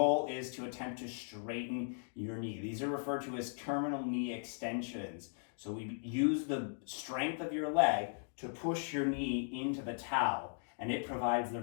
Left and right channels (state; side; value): silent; right; digital silence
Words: is to attempt to straighten your knee. These are referred to as terminal knee extensions. So we use the strength of your leg to push your knee into the towel, and it provides the